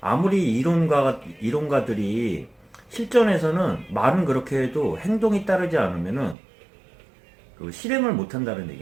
이론가들이 실전에서는 말은 그렇게 해도 행동이 따르지 않으면은 그 실행을 못 한다는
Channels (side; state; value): left; drops out; at 6.4 s